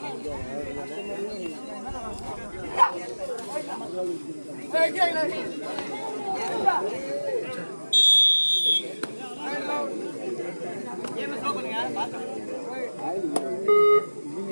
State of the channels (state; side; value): inverted; both; correlation -1.00